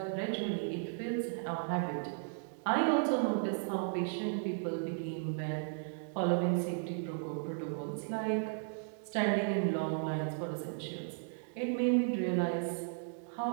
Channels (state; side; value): silent; left; digital silence